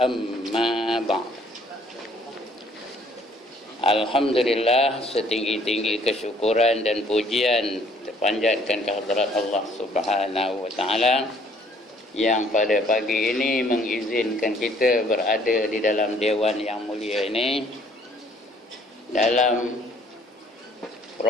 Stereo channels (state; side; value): normal; both; correlation 0.60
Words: أما بعد. Alhamdulillah, setinggi-tinggi kesyukuran dan pujian terpanjatkan kehadrat Allah Subhanahu wa taala yang pada pagi ini mengizinkan kita berada di dalam dewan yang mulia ini, dalam